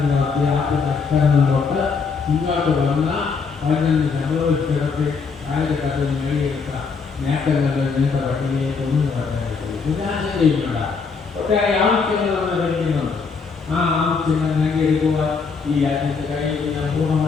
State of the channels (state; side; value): quieter; right; 5.1 dB